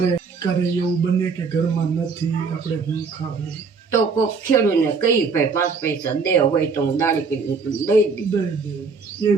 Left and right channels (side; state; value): left; quieter; 4.9 dB